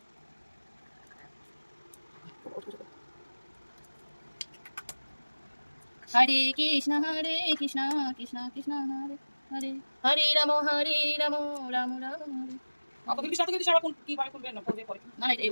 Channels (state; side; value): inverted; both; correlation -1.00